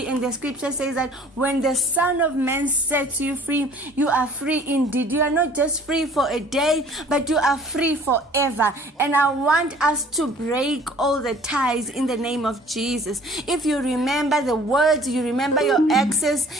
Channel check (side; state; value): both; normal; correlation 0.52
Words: and the scripture says that when the Son of Man sets you free, you are free indeed. You are not just free for a day, but you are free forever. And I want us to break all the ties in the name of Jesus. If you remember the words, you remember your exes,